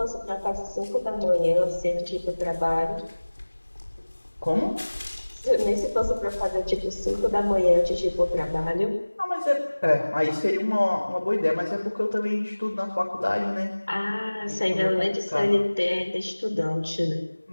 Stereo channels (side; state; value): both; inverted; correlation -1.00